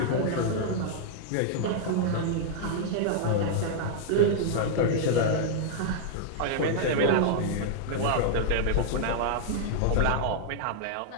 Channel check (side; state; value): both; different; correlation -0.01